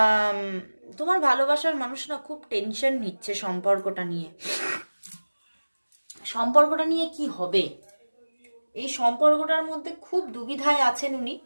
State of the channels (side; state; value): both; inverted; correlation -1.00